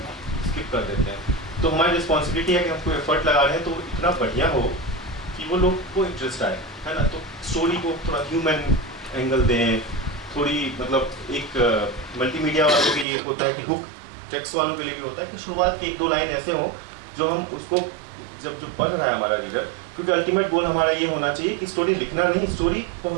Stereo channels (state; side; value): drops out; left; at 13.1 s